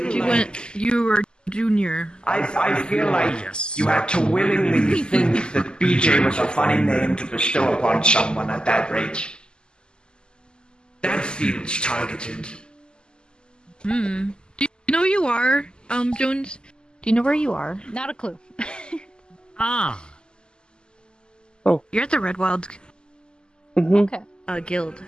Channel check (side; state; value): right; late; 0.048 ms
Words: You like... went. You were junior. I feel like Yes. you had to willingly think that BJ was a funny name to bestow upon someone at that rate. That feels targeted. Hmm. Do you know who you are, Jones? Do you know where you are? Not a clue. Ah! You're at the Red Wild Hmm. Okay. guild.